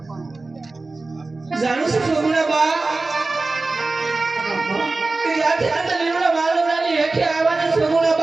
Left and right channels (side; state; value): left; quieter; 3.4 dB